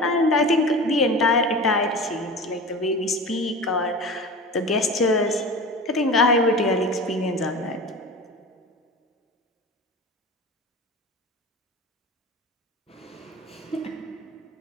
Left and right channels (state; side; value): normal; both; correlation 0.32